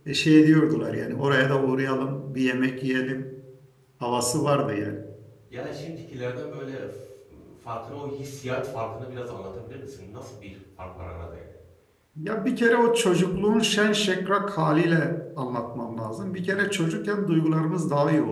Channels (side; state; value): both; identical; correlation 1.00